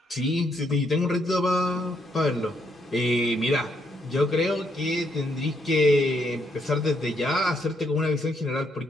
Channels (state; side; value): normal; both; correlation 0.75